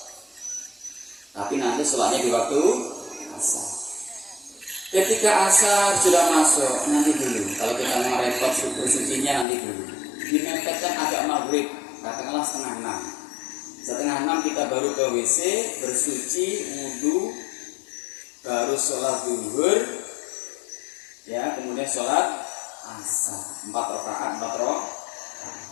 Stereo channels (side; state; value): right; drops out; at 9.5 s